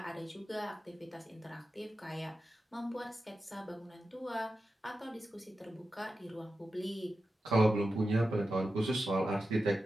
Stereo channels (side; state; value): both; normal; correlation 0.91